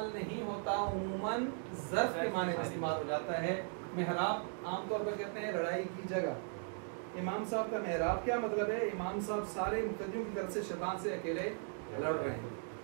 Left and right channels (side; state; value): left; silent; 52 dB below the other